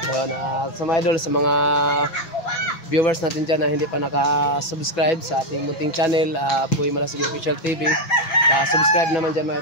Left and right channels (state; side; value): late; right; 6.2 ms